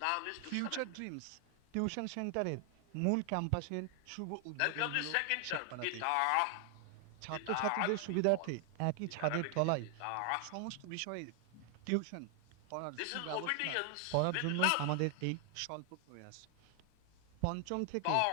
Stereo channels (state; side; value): different; both; correlation 0.00